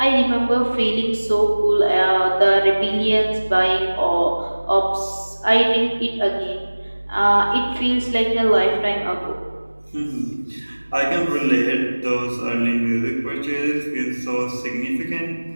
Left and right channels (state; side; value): inverted; both; correlation -1.00